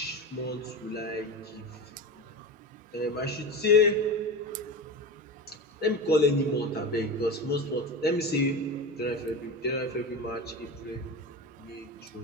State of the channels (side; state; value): both; normal; correlation 0.25